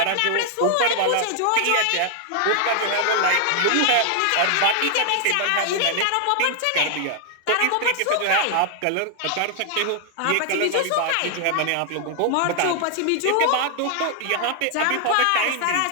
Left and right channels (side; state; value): both; different; correlation 0.00